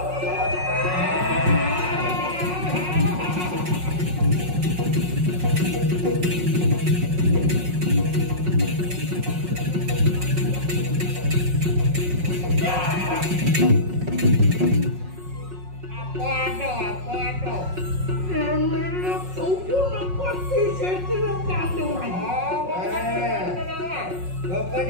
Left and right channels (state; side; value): late; left; 5.5 ms